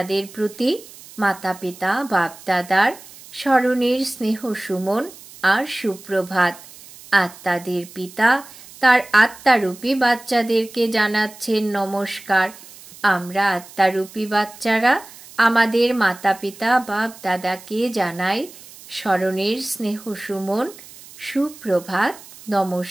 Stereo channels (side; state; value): right; noise; hiss, 19 dB below the sound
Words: প্রতি মাতা পিতা বাপদাদার স্মরণের স্নেহ সুমন আর সুপ্রভাত। আত্মাদের পিতা তার আত্মারূপী বাচ্চাদেরকে জানাচ্ছেন নমস্কার। আমরা আত্মারূপী বাচ্চারা আমাদের মাতা পিতা বাপ দাদাকে জানাই স্মরণের স্নেহ সুমন, সুপ্রভাত,